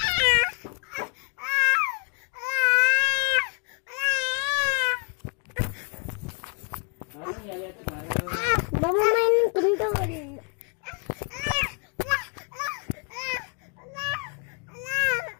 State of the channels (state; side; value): quieter; right; 38.3 dB